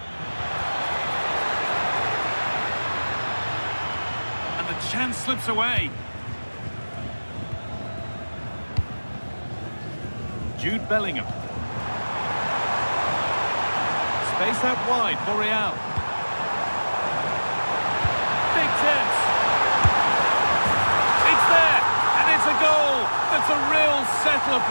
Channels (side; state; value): both; inverted; correlation -1.00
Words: The chance slips away. Jude Bellingham. Space out wide for Real. Big chance. It's there, and it's a goal. That's a real settler